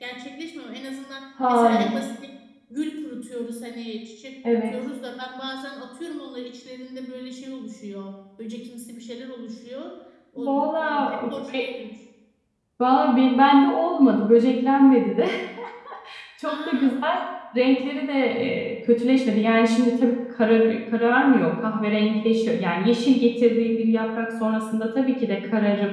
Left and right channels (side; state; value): both; identical; correlation 1.00